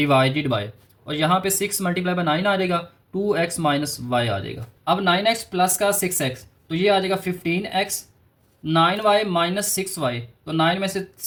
बाय, और यहाँ पे 6 मल्टीप्लाई बाय 9 आ जाएगा, 2x माइनस y आ जाएगा। अब 9x प्लस का 6x तो ये आ जाएगा 15x, 9y माइनस 6y, तो 9 में से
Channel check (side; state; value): both; identical; correlation 1.00